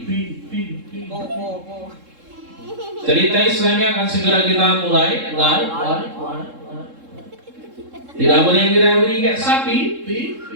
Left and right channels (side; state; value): left; late; 3.7 ms